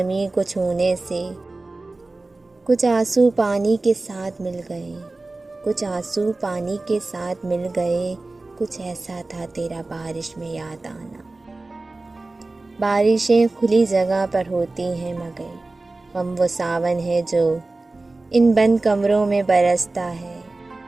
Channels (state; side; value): quieter; left; 3.2 dB